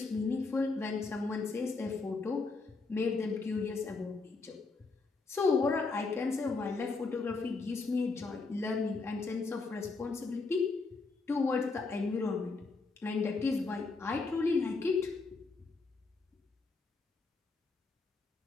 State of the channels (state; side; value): quieter; right; 4.0 dB